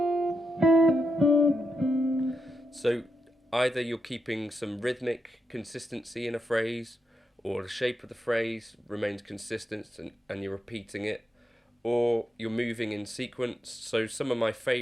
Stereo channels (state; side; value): normal; both; correlation 0.84